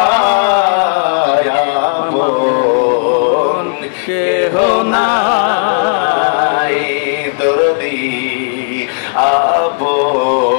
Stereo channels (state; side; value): silent; right; digital silence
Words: কেহ নাই দরদি